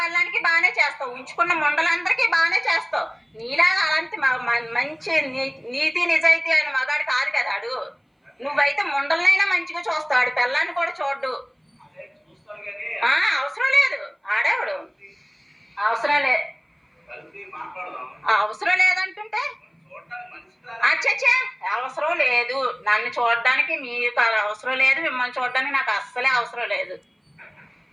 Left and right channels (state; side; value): identical; both; correlation 1.00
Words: బాగానే చేస్తావు, ఉంచుకున్న ముండలందరికీ బాగానే చేస్తావు. నీలాగా అలాంటి మంచి నీతి నిజాయితీ అయిన మగాడు కాదు కదా ఆడు. నువ్వైతే ముండలనైనా మంచిగా చూస్తాడు, పిల్లాన్ని కూడా చూడ్డు. అవసరం లేదు. ఆడేవాడు అవసరం లేదు, అవసరం లేదంటుంటే అచ్చచ్చా అవసరం లేదు. నన్ను చూడడానికి మీకు అవసరం లేదు, మిమ్మల్ని చూడడానికి నాకు అస్సలే అవసరం లేదు.